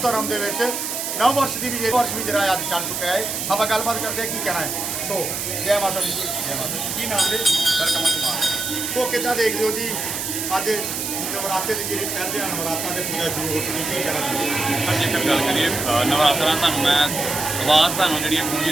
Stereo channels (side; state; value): right; noise; hiss, 3 dB below the sound